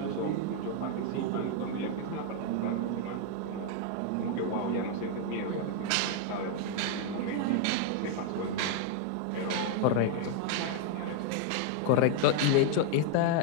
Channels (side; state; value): both; different; correlation 0.00